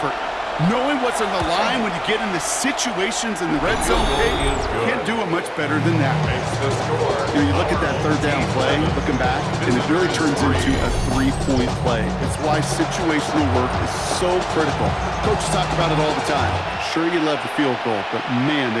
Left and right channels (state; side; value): identical; both; correlation 1.00